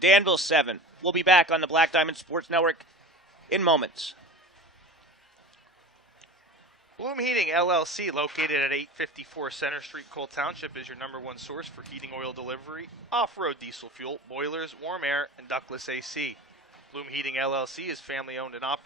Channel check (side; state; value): both; normal; correlation 0.34